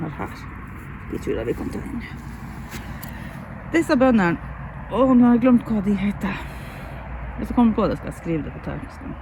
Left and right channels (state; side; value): identical; both; correlation 1.00